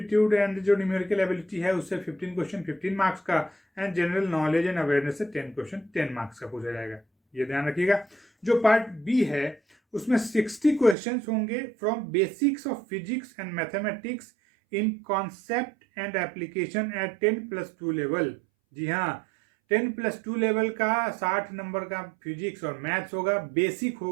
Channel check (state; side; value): drops out; left; at 11.0 s